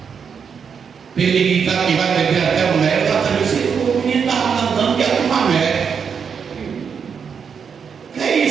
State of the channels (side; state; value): left; quieter; 6.6 dB